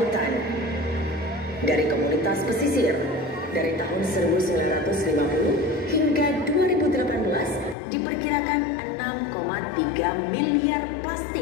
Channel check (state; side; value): drops out; right; at 7.8 s